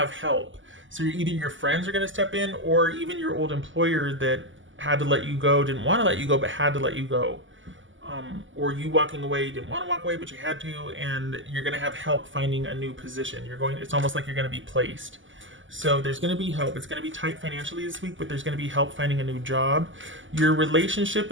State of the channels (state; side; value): late; left; 0.56 ms